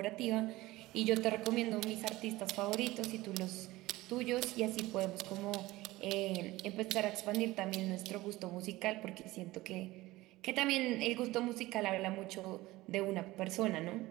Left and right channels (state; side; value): quieter; left; 18.7 dB